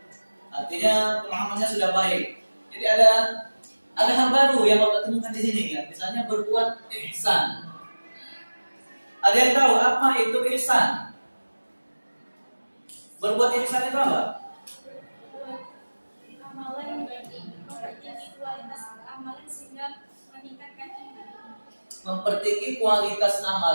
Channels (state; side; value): inverted; both; correlation -1.00